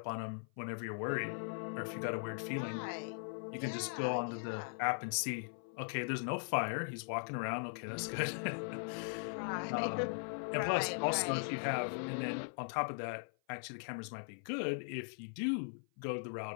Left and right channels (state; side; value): silent; right; 51 dB below the other